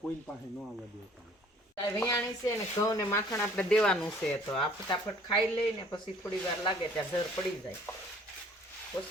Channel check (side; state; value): both; normal; correlation 0.55